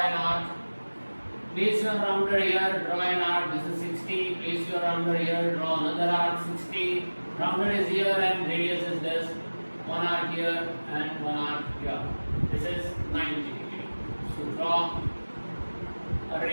arc. Place your rounder here, draw an arc. This is 60. Place your rounder here, draw another arc. 60. Rounder is here and radius is this. One arc here and one arc here. This is 90 degree. So draw a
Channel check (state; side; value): inverted; both; correlation -1.00